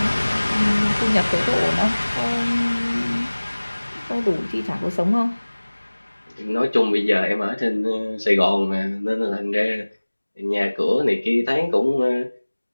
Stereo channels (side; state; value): both; inverted; correlation -1.00